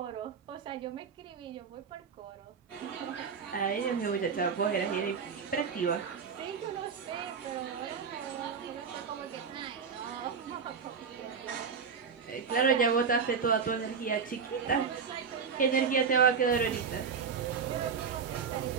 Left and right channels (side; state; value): left; quieter; 6.1 dB